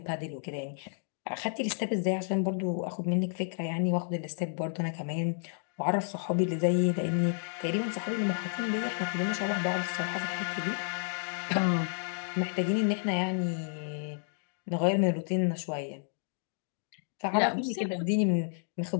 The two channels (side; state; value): right; silent; digital silence